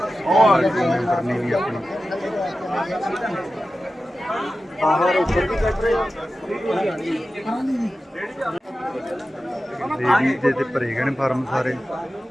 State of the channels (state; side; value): normal; both; correlation 0.93